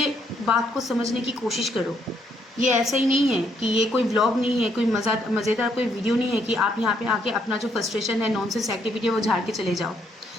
बात को समझने की कोशिश करो। ये ऐसा ही नहीं है कि ये कोई व्लॉग नहीं है, कोई मज़ेदार कोई वीडियो नहीं है कि आप यहाँ पे आके अपना जो फ्रस्ट्रेशन है, नॉनसेंस एक्टिविटी है, वो झाड़ के चले जाओ।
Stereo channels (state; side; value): normal; both; correlation 0.72